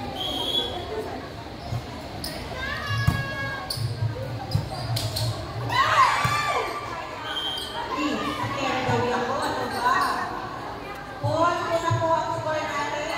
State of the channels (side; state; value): both; identical; correlation 1.00